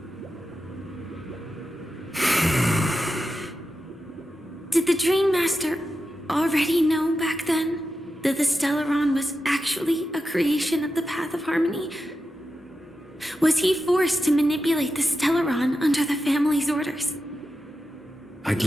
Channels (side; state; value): both; normal; correlation 0.90